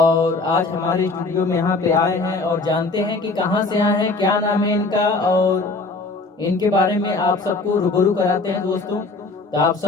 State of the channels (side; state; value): right; quieter; 3.5 dB